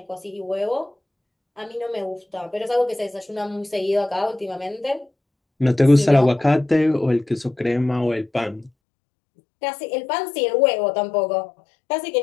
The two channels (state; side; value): drops out; right; at 8.7 s